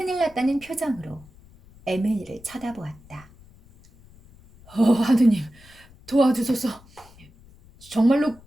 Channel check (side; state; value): left; noise; rumble, 25 dB below the sound